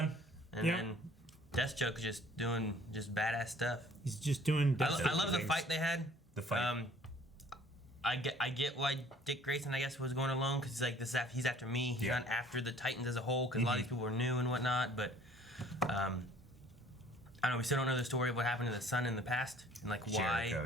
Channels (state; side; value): normal; both; correlation 0.55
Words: And then Deathstroke is just doing just badass stuff. He's just doing. I love the fight they had. The fight. I get why Dick Grayson, I guess, was going alone, because he's like, he's after me. He's not after the Titans as a whole, because a lot of these people were new and whatnot. But I don't know. We still don't know the story of what happened to the son in the past, and like